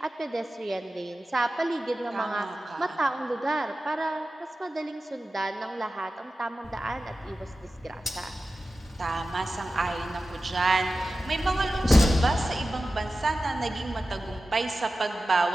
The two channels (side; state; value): both; normal; correlation 0.94